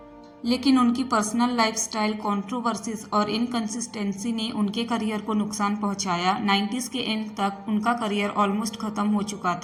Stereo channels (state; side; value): identical; both; correlation 1.00